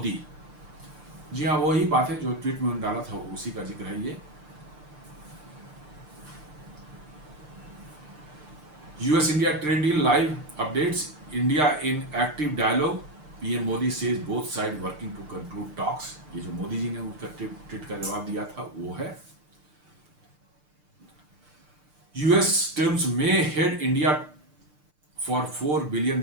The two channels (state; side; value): late; left; 6.7 ms